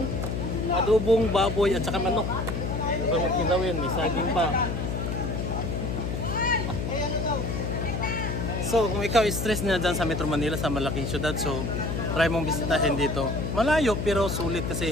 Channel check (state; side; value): noise; left; hum, 2 dB below the sound